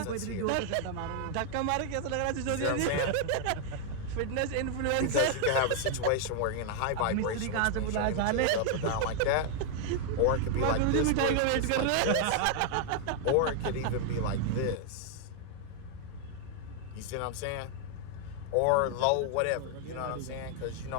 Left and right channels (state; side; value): different; both; correlation 0.00